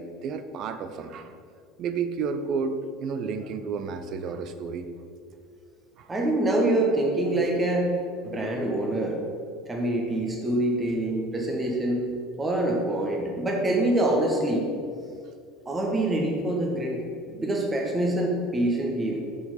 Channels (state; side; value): normal; both; correlation 0.51